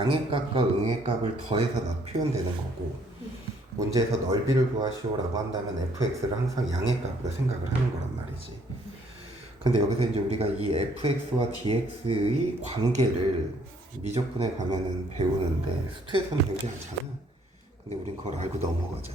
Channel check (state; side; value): normal; both; correlation 0.65